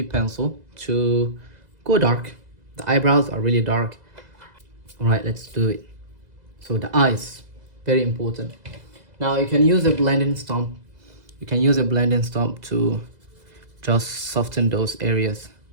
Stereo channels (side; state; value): left; late; 2.0 ms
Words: pencil to go dark. The eyebrows are really dark. All right, let's do it. So the eyes, very important. Now you can use a blending stump. You can use a blending stump to just soften those areas.